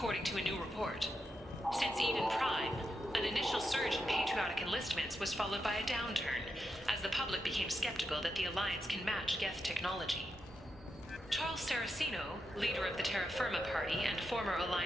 to a new report. Since Eden Prime, an initial surge in patriotic enlistments was followed by a downturn, as the public became skeptical that the Alliance can match Geth technology. Charles Saraceno, leader of the Terra Firma Party and former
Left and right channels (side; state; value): both; normal; correlation 0.85